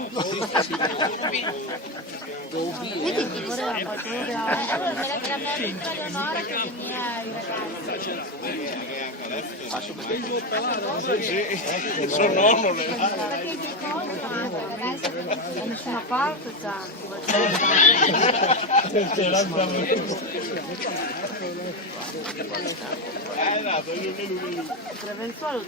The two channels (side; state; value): both; normal; correlation 0.13